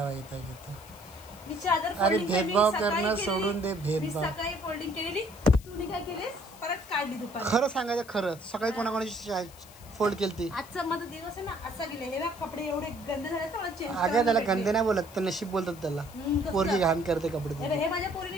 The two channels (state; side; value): noise; left; hiss, 21 dB below the sound